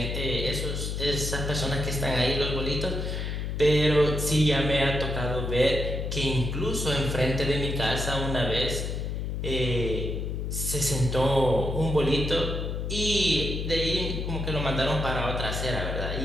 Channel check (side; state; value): left; noise; hum, 3 dB below the sound